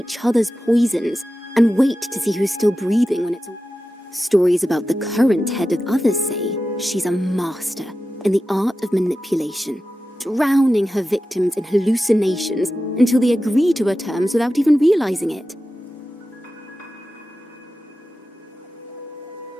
other's poisons and wait to see who's still breathing when it's all... Stories about the current head of others say she's a master in the art of manipulation, drowning her victims in hallucinations until they agree to her terms without even realizing it.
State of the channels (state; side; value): normal; both; correlation 0.93